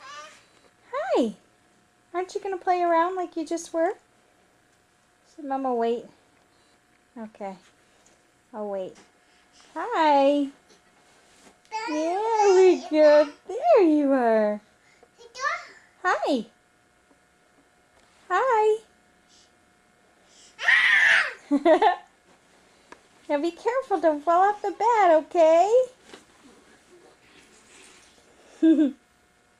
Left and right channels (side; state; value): both; identical; correlation 1.00